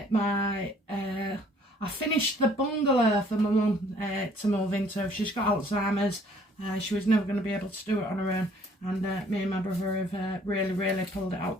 I finished the bungalow for my mum to move into. She's got Alzheimer's. She was never going to be able to do it on her own, and me and my brother have really pulled it out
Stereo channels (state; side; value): normal; both; correlation 0.59